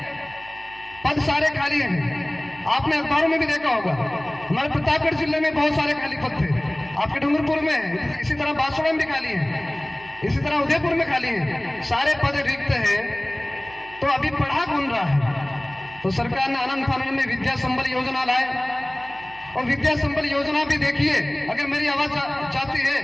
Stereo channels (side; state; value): right; noise; hum, 23 dB below the sound